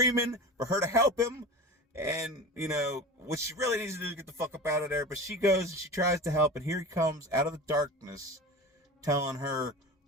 for her to help him. And, you know, what she really needs to do is get the fuck up out of there. But she goes and she tries to help, and here he comes out of the darkness telling her,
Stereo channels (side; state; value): both; normal; correlation 0.32